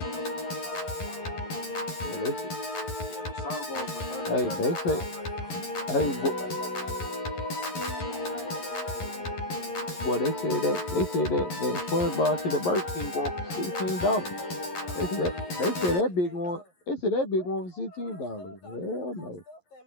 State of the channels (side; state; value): right; late; 11 ms